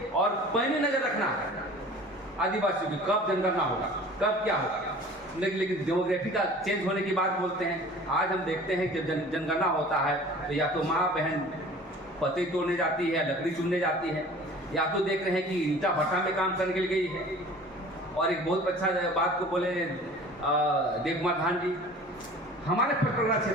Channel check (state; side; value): normal; both; correlation 0.45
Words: और पैनी नजर रखना है आदिवासियों की, कब जनगणना होगा, कब क्या होगा। लेकिन डेमोग्राफी का चेंज होने की बात बोलते हैं। आज हम देखते हैं जब जनगणना होता है तो या तो माँ बहन पत्ते तोड़ने जाती है, लकड़ी चुनने जाती है, या तो देख रहे हैं कि ईंटा भट्टा में काम करने के लिए गई है। और एक बहुत अच्छा बात को बोले देव कुमार धान जी, हमारे पटना